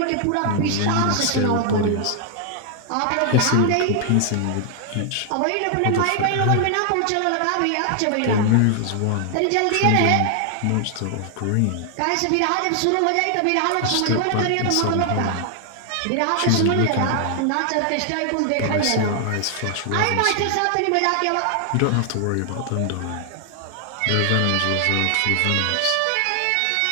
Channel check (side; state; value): both; different; correlation 0.00